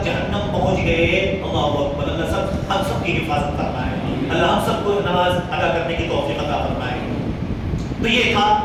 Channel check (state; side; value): identical; both; correlation 1.00